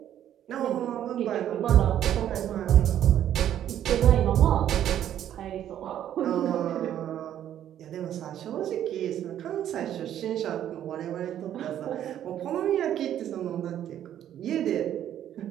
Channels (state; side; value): quieter; left; 10.9 dB